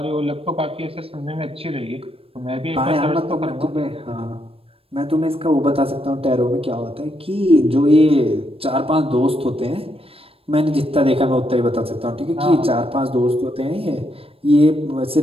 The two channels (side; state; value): left; late; 0.28 ms